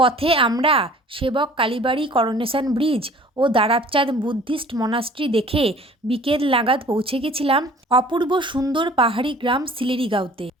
আমরা সেবক কালীবাড়ি, করোনেশন ব্রিজ ও দারাবচাঁদ বুদ্ধিস্ট মনাস্ট্রি দেখে বিকেল নাগাদ পৌঁছে গেছিলাম অপূর্ব সুন্দর পাহাড়ি গ্রাম সিলেরিগাঁওতে।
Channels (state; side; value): normal; both; correlation 0.49